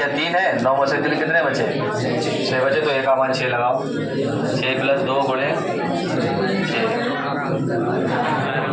3 है, 9 में से 3 कितने बचे? 6 बचे, तो A का मान 6 लगाओ। 6 + 2 गुणे 6,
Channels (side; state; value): both; identical; correlation 1.00